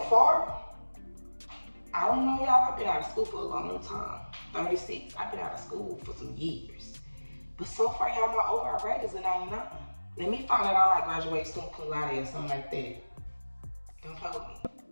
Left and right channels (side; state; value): both; inverted; correlation -1.00